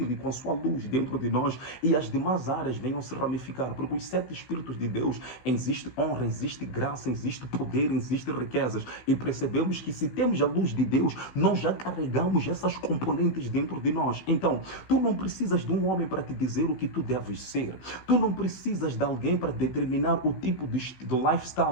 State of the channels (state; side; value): late; right; 16 ms